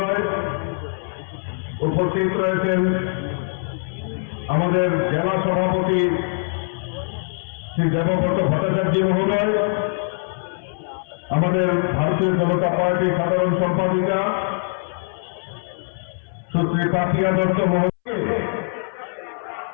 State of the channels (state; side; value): silent; right; 64 dB below the other